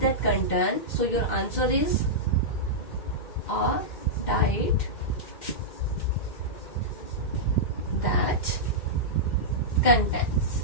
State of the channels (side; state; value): right; late; 2.1 ms